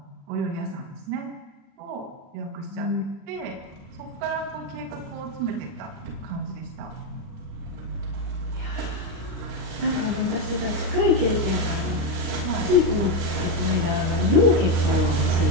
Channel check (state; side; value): late; left; 36 ms